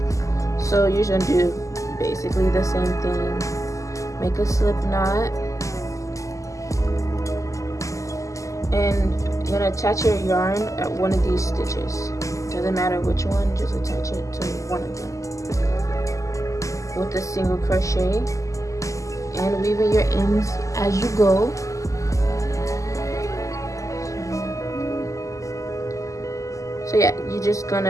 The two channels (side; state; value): right; late; 0.16 ms